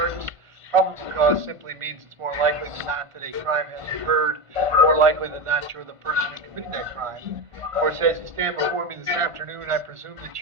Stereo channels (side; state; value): left; late; 1.5 ms